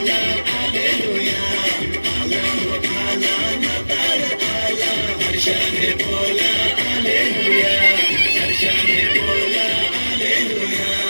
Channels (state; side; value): inverted; both; correlation -1.00